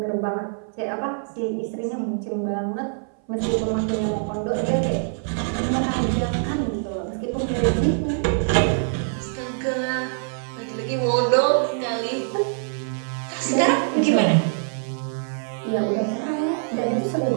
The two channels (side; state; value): left; silent; 59 dB below the other